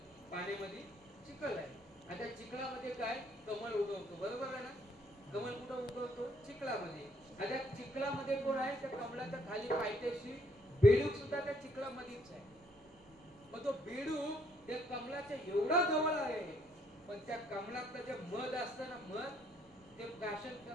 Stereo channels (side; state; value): both; normal; correlation 0.68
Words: पाण्यामध्ये चिखल आहे आणि त्या चिखलामध्ये काय कमळ उगवतो बरोबर आहे ना. कमळ कुठं उगवतो चिखलामध्ये. आणि त्या चिखलामध्ये कोण आहे त्या कमळाच्या खाली पायथ्याशी बेडूक सुद्धा त्या चिखलामध्येच आहे. मग तो बेडूक त्या कमळाच्या एवढा जवळ आहे पण त्या कमळातलं जे मध असतं ना मध ते प्राशन